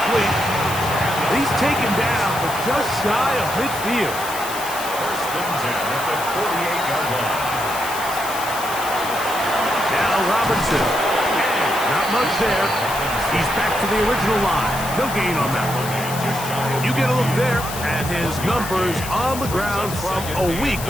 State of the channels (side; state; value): left; noise; hiss, 9 dB below the sound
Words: He's taken down, but just shy of midfield. First and 10 at the 48-yard line. Now Robinson. And not much there. He's back to the original line. No gain on that one. You get a look there at his numbers on the ground from a week